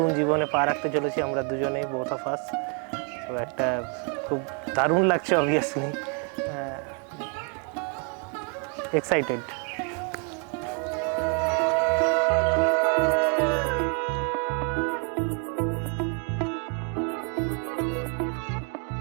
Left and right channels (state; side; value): quieter; left; 37.7 dB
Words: জীবনে পা রাখতে চলেছি আমরা দুজনেই, বোথ অফ আস। তো একটা খুব দারুণ লাগছে, অবভিয়াসলি এক্সাইটেড।